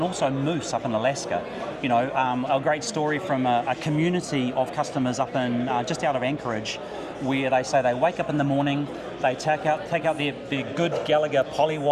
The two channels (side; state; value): both; identical; correlation 1.00